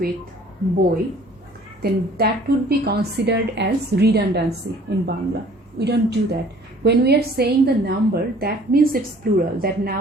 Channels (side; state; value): both; normal; correlation 0.53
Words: boy, then that would be considered as redundancy in Bangla. We don't do that. When we are saying the number, that means it's plural. That